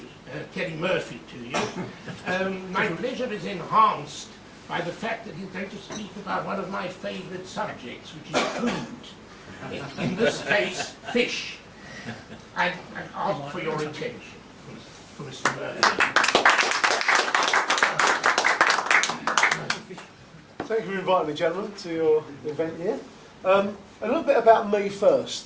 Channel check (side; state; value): both; identical; correlation 1.00